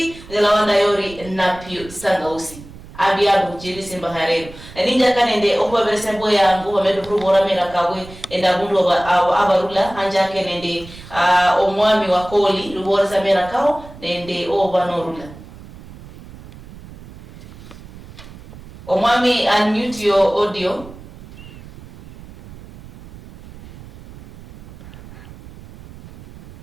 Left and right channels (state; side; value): noise; right; rumble, 18 dB below the sound